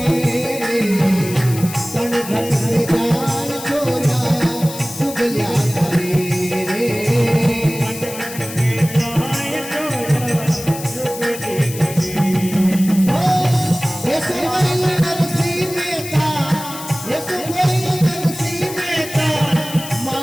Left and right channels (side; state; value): left; noise; hiss, 11 dB below the sound